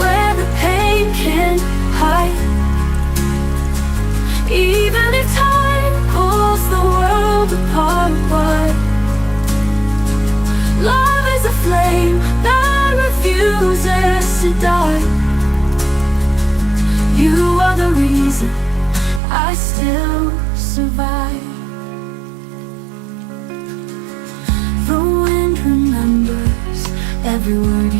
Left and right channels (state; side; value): drops out; left; at 19.2 s